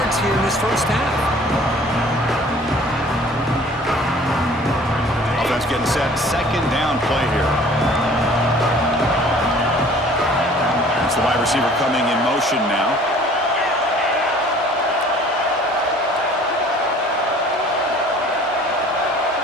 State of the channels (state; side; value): normal; both; correlation 0.51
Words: here in this first half. Offense getting set. Second down play here. That's the wide receiver coming in motion now.